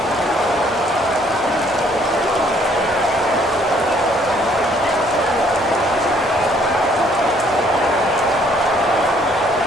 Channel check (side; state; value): both; normal; correlation 0.63